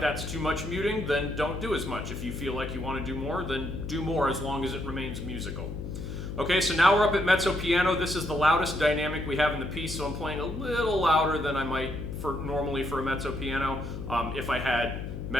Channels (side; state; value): left; noise; hum, 7 dB below the sound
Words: that's too much muting, then don't do as much. If you feel like you want to do more, then do more as long as it remains musical. Okay, so now we're up at mezzo piano. This is the loudest dynamic we have in the piece, so I'm playing a little louder than I might normally for a mezzo piano if I had